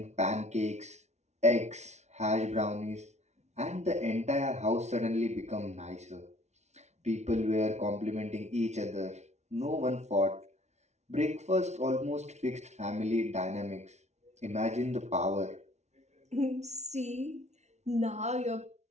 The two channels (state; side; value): late; left; 0.32 ms